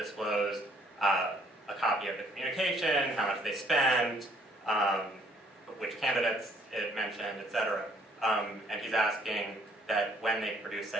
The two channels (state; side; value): normal; both; correlation 0.63